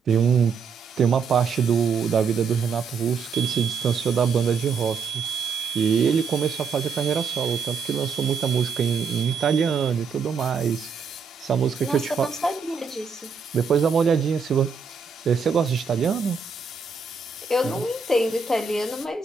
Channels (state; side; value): quieter; left; 5.5 dB